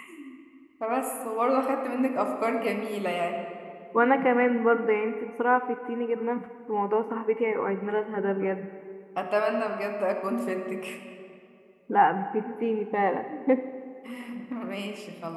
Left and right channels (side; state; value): both; identical; correlation 1.00